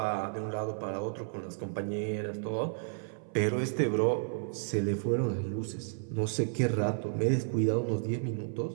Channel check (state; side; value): silent; left; 56 dB below the other